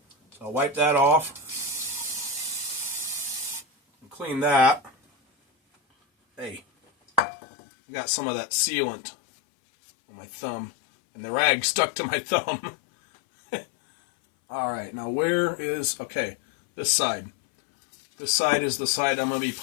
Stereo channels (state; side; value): drops out; right; at 7.2 s